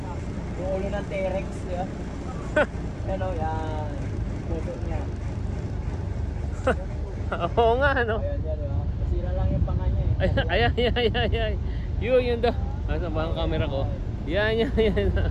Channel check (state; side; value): identical; both; correlation 1.00